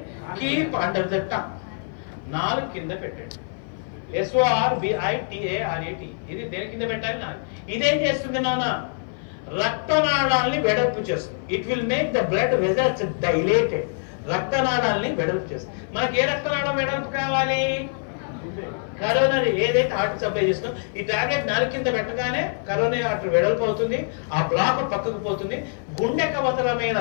Keep under the tongue. 4 కింద పెట్టండి. SORBITARATE. ఇది దేని కింద పెట్టాలి? 4. ఇదేం చేస్తుంది నాన్న? రక్తనాళాల్ని వెడల్పు చేస్తుంది. It will make the blood vessels dilated. రక్తనాళాల్ని వెడల్పు చేస్తుంది. మనకి ఏ రక్తనాళం వెడల్పు కావాలి? కరోనరీ, ఏదైతే హార్ట్ సప్లై చేస్తుందో ఈ టాబ్లెట్ 4 కింద పెట్టగానే కరోనరీ ఆర్టరీ వెడల్పు అవుతుంది. ఆ బ్లాక్ పక్కకు పోతుంది. గుండెకు అవసరమైన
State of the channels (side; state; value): right; silent; 57 dB below the other